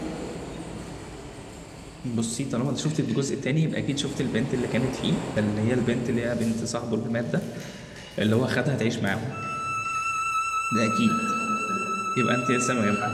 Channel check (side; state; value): both; identical; correlation 1.00